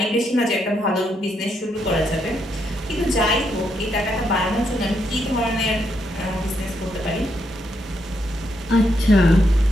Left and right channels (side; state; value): both; normal; correlation 0.78